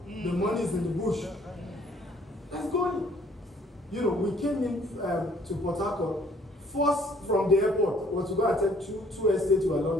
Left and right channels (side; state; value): both; normal; correlation 0.60